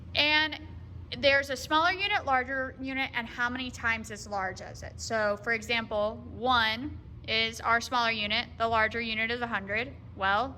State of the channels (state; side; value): identical; both; correlation 1.00